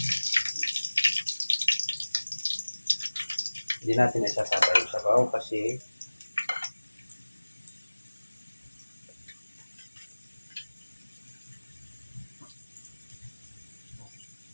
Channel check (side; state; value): both; inverted; correlation -1.00